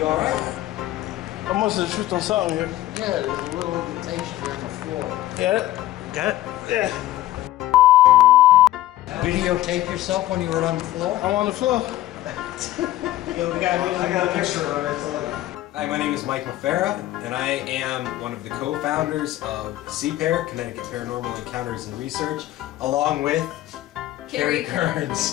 alright? I must have tripped on something here. Yeah, there's a little indentation here on the floor. Got it? Got it? Yeah. Videotape yourself when you were on the floor? I'm on the floor. I got a picture of it. Hi, my name is Mike Mafera, and I am one of the co-founders of CPAIR, Connecticut Paranormal Encounters and Research, along with Carrie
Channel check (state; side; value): quieter; right; 15.1 dB